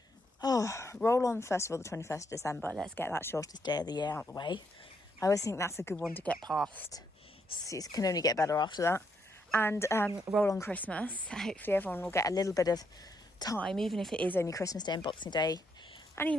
roll on, first of all, the 21st of December. Let's get that shortest day of the year out of the way. I always think that's a good one to get past. It can only get better after that. And roll on Christmas. Hopefully everyone will get a little bit of time, even if it is only Christmas Day and Boxing Day. And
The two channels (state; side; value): normal; both; correlation 0.76